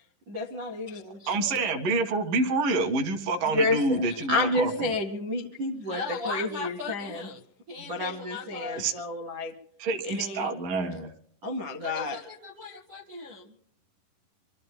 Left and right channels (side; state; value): left; late; 11 ms